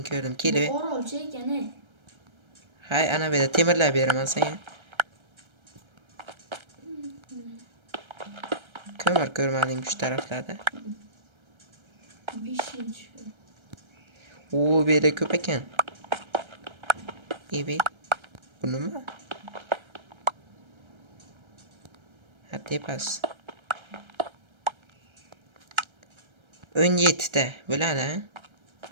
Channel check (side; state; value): left; late; 1.3 ms